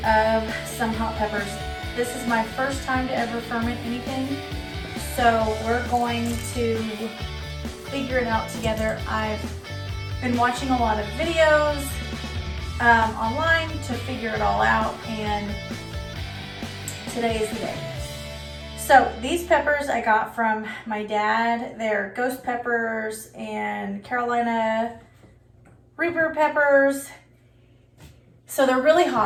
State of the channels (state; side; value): identical; both; correlation 1.00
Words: of some hot peppers. This is my first time to ever ferment anything, so we're going to figure it out together. I've been watching a lot of videos online to figure it all out, and today is the day. So these peppers I got from my dad. They're ghost peppers and Carolina Reaper peppers. So they're really